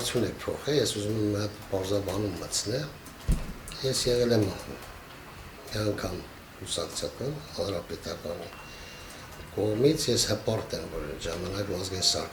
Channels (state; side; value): identical; both; correlation 1.00